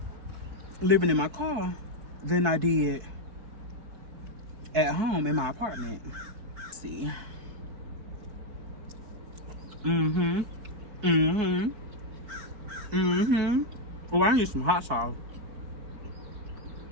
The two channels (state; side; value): late; left; 4.6 ms